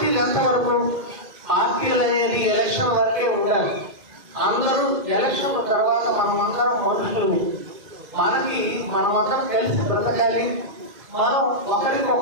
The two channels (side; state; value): left; late; 2.1 ms